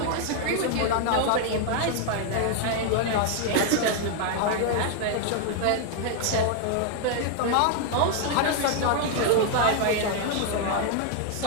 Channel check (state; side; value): different; both; correlation 0.00